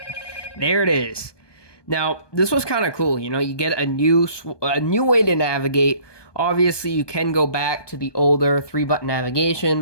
There it is. Now, this was kind of cool. You get a new way to navigate. Obviously, you can go back to the older 3-button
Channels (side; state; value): right; late; 1.2 ms